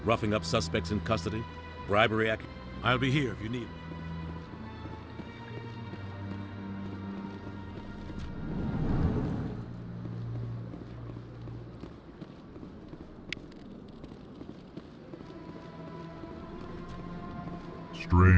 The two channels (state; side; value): identical; both; correlation 1.00